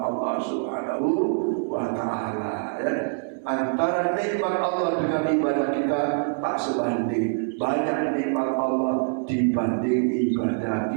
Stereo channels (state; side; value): silent; left; digital silence